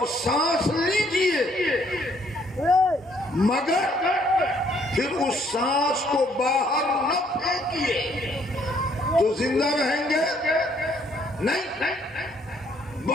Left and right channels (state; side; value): normal; both; correlation 0.66